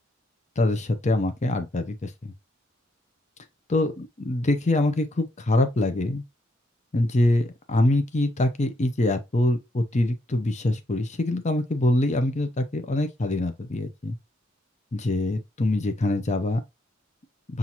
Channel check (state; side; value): normal; both; correlation 0.76